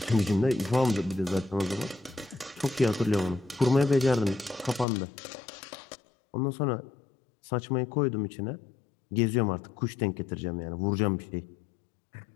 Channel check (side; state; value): right; drops out; at 4.9 s